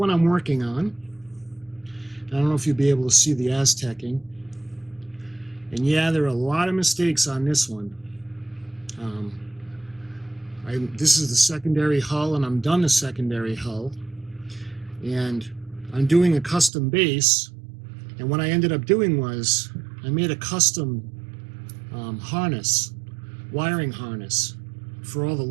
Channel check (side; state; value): left; drops out; at 16.7 s